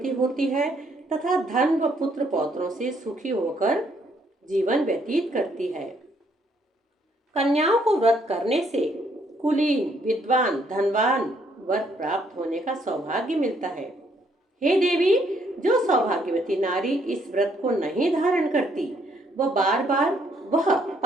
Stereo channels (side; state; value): both; normal; correlation 0.69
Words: होती है तथा धन व पुत्र पौत्रों से सुखी होकर जीवन व्यतीत करती है। कन्याओं को व्रत करने से कुलीन, विद्वान, धनवान वर प्राप्त होने का सौभाग्य मिलता है। हे देवी, जो सौभाग्यवती नारी इस व्रत को नहीं धारण करती वह बार